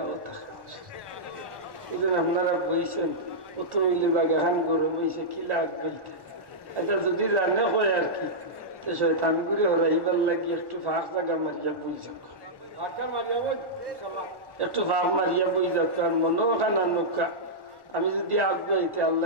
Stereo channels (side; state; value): left; late; 1.1 ms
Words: থাকে বুঝলেন আপনারা বইছেন কত হইলে বাগান গরম হয়েছে কিলা আগ বইতে আচ্ছা যদি জানে হয় আর কি তো শয়তান করে হরাইবার লাগি একটু ফাঁক জায়গা মারিয়া বই যাক একটু ফাঁক মারিয়া বই যাক আর মনে ওখানা নৌকা আমি যদি আগ বইতে